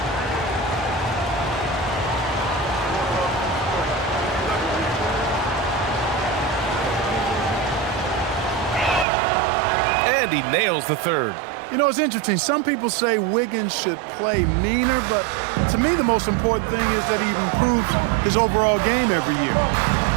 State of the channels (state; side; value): drops out; left; at 9.1 s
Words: And he nails the third. You know, it's interesting. Some people say Wiggins should play meaner, but to me the most important thing is that he improves his overall game every year.